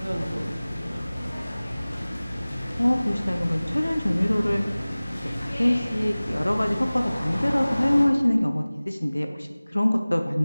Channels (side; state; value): both; inverted; correlation -0.99